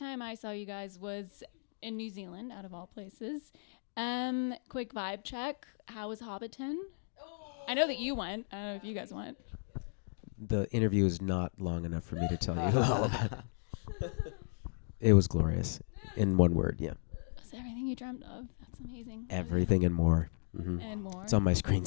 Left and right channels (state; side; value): silent; right; digital silence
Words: I saw you guys was in New Zealand, out of all places. Quick vibe check. How was Hobbiton? Oh. I know that you went. I don't know if you guys went. The interview is not long enough for me to tell you. It was glorious. In one word, yeah. Was everything you dreamt of? That's amazing. Everything and more. Mm-hmm. And more. It's on my